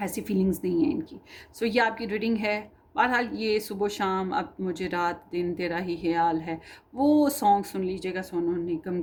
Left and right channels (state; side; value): identical; both; correlation 1.00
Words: ऐसी फीलिंग्स नहीं है इनकी। सो ये आपकी रीडिंग है। बहरहाल ये सुबह शाम, अब मुझे रात दिन तेरा ही ख्याल है, वो सॉन्ग सुन लीजिएगा, सोनू निगम